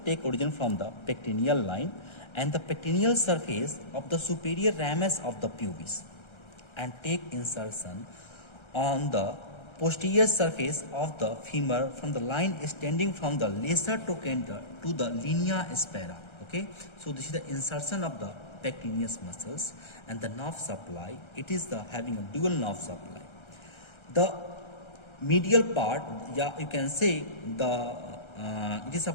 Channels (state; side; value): late; right; 1.3 ms